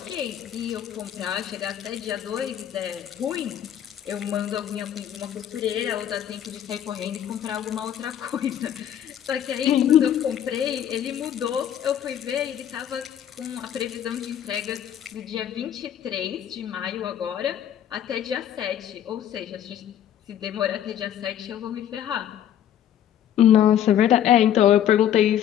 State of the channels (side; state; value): right; quieter; 10.3 dB